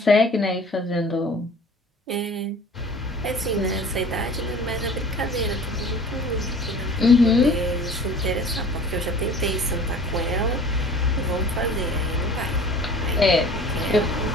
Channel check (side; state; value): both; normal; correlation 0.45